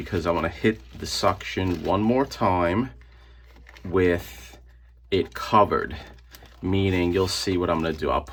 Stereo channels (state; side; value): identical; both; correlation 1.00